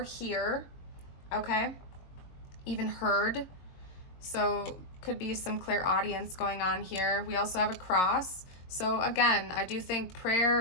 hear. Okay, even heard. So could be some clairaudience going on here. We also have a cross. So again, I do think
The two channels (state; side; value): late; right; 22 ms